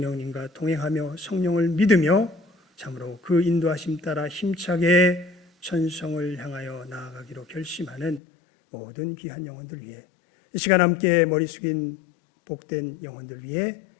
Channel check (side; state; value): right; drops out; at 8.2 s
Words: 동행하며 성령을 믿으며 참으로 그 인도하심 따라 힘차게 천성을 향하여 나아가기로 결심하는 모든 귀한 영혼들 위해 이 시간 함께 머리 숙인 복된 영혼들 위해